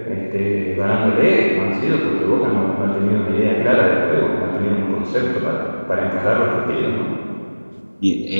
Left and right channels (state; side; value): inverted; both; correlation -1.00